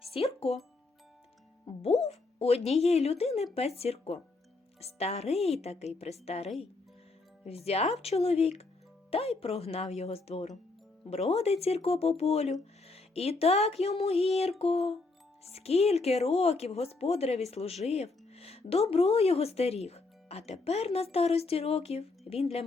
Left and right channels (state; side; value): quieter; right; 3.5 dB